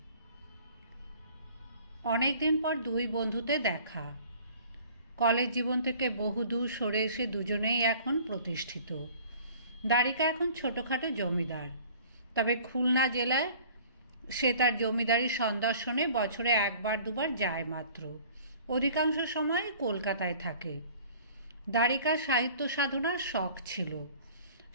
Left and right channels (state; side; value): inverted; both; correlation -0.49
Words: অনেকদিন পর দুই বন্ধুতে দেখা। কলেজ জীবন থেকে বহুদূর সরে এসে দুজনেই এখন প্রতিষ্ঠিত। দ্বারিকা এখন ছোটোখাটো জমিদার, তবে খুলনা জেলায় সে তার জমিদারি সন্দর্শনে বছরে একবার দুবার যায় মাত্র। অধিকাংশ সময় কলকাতায় থাকে। দ্বারিকার সাহিত্য সাধনার শখ ছিল,